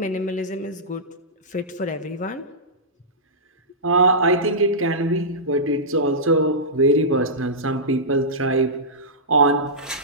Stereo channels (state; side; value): normal; both; correlation -0.15